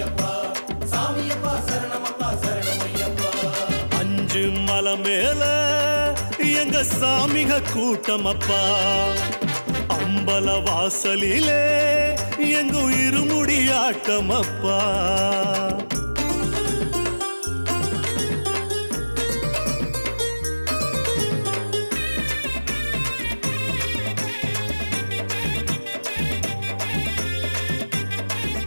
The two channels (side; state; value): both; inverted; correlation -1.00